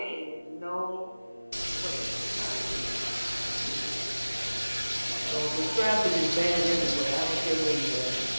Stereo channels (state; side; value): inverted; both; correlation -0.99